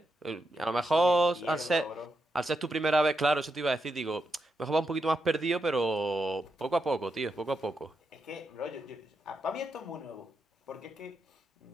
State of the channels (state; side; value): normal; both; correlation 0.84